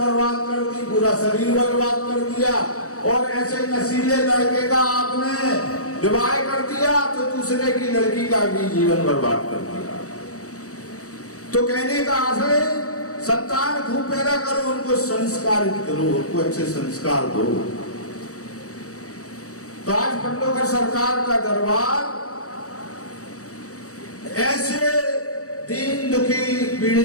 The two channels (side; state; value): right; late; 0.65 ms